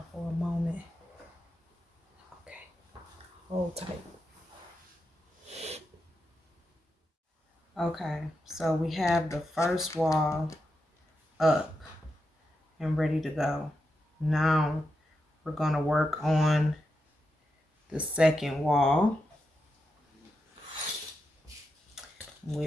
for a moment. Okay. Hold tight. Okay, so we have the first wall up and ready to go. Now we're going to work on the second wall.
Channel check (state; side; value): normal; both; correlation 0.87